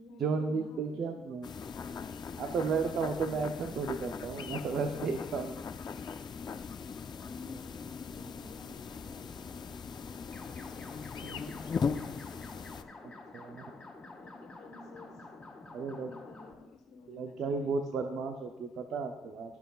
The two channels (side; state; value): both; normal; correlation 0.67